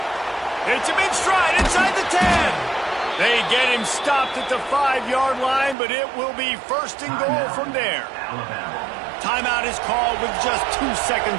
Hits him in stride inside the 10. They get him stopped at the 5-yard line, but it will be first and goal from there. Timeout is called with just 2 seconds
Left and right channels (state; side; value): drops out; left; at 5.8 s